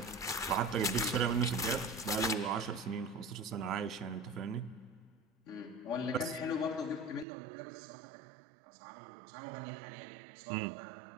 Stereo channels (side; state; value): left; drops out; at 7.2 s